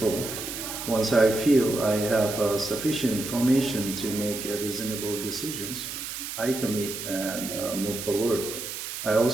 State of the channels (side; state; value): right; noise; hiss, 7 dB below the sound